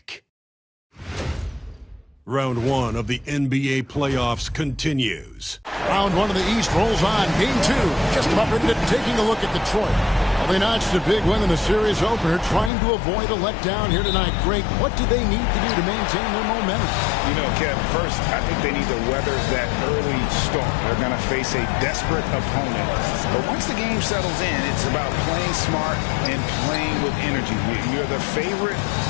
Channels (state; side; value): drops out; right; at 12.7 s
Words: Round 1 of the NBA playoffs continues. Round 1 of the East rolls on. Game 2, just about ready to taking a look at Detroit. Well, they notched a big win in the series opener, trying to avoid a letdown here tonight. Greg, what do they need to do to maintain their momentum? You know, Kev, first, I think they need to weather that early storm. They're going to face a desperate opponent. But once the game settles in, it's about playing smart and playing with energy. You're the favorite